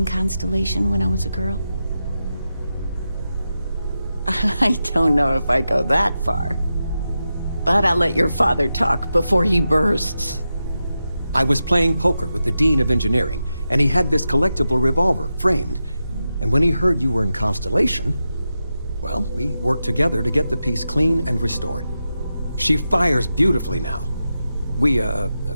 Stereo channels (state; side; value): inverted; both; correlation -0.90